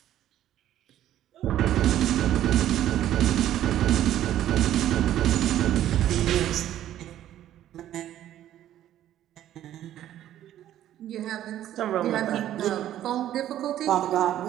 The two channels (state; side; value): quieter; left; 12.2 dB